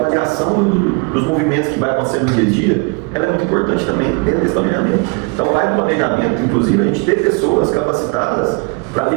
dos movimentos que vai acontecendo no dia a dia, ela é muito importante também dentro desse planejamento. Então vai no planejamento, inclusive, a gente ter pessoas capacitadas para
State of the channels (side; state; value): left; quieter; 31.1 dB